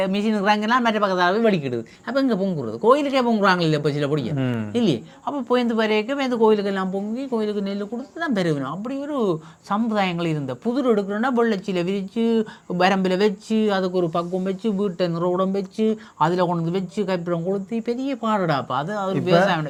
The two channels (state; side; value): identical; both; correlation 1.00